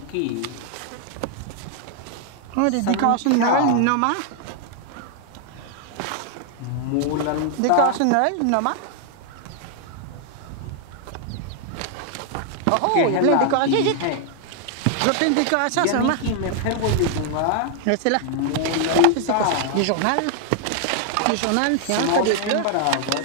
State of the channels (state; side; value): different; both; correlation 0.00